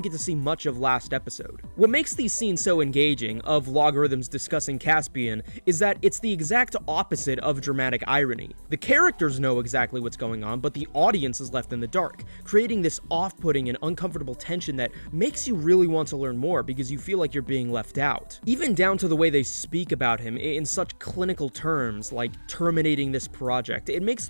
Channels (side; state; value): both; inverted; correlation -1.00